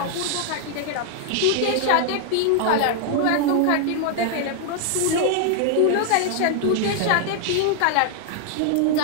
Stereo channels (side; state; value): both; different; correlation 0.00